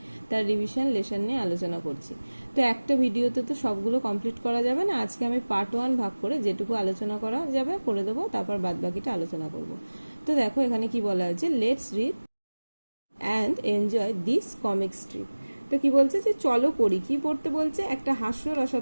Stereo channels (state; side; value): inverted; both; correlation -1.00